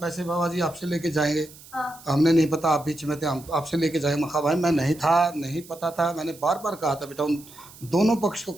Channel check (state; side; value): noise; right; hiss, 20 dB below the sound